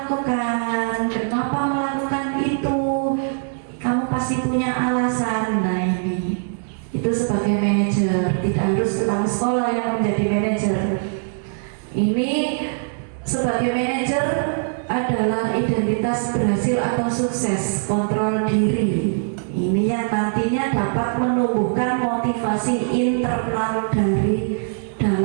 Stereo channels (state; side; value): silent; left; digital silence